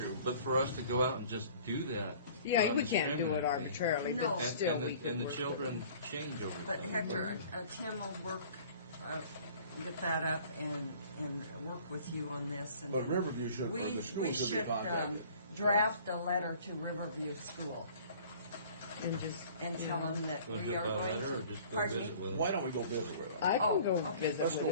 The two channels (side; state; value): both; inverted; correlation -0.50